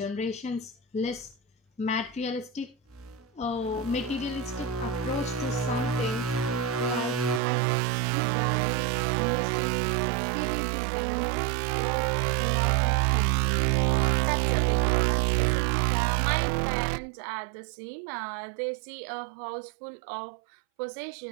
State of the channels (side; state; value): left; drops out; at 7.4 s